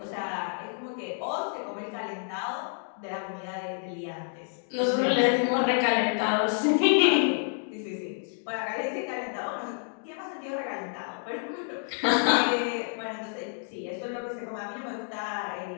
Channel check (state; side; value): silent; right; 58 dB below the other